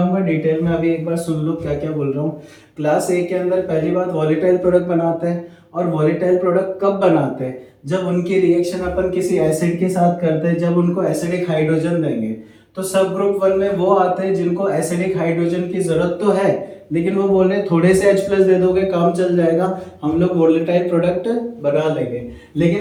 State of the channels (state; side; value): identical; both; correlation 1.00